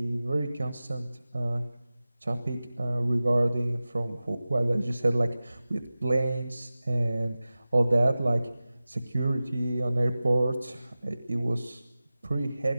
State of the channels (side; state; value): both; inverted; correlation -0.96